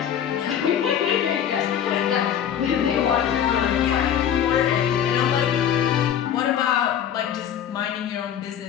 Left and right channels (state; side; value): quieter; right; 9.4 dB